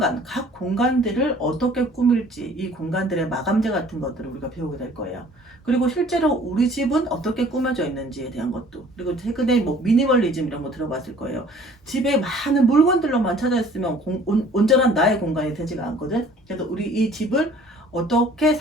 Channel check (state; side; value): normal; both; correlation 0.53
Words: 각 공간들을 어떻게 꾸밀지, 이 공간들의 마감재 같은 것들을 우리가 배우게 될 거예요. 그리고 실제로 우리 집은 어떻게 꾸며져 있는지에 대한 것도, 그리고 최근에 뭐 미니멀리즘 이런 거 들어봤을 거예요. 집에 많은 물건들로만 찾아 있으면 온전한 나의 공간이 되지가 않거든. 그래서 우리 이 집을 어떻게